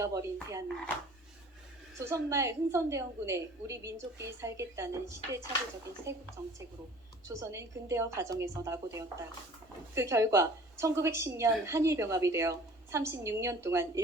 대한민국. 조선말 흥선대원군에 우리 민족끼리 살겠다는 시대착오적인 세국 정책으로 조선은 근대화 과정에서 낙오되었다. 그 결과 1910년 한일병합이 되어 36년 동안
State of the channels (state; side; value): normal; both; correlation 0.48